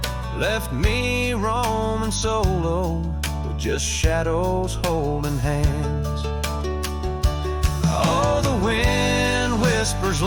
left me roaming solo with just shadows holding hands. Oh, the wind whispers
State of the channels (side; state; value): both; identical; correlation 1.00